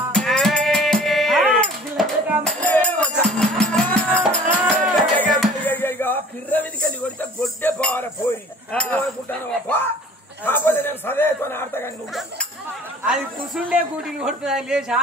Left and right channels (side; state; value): both; normal; correlation 0.48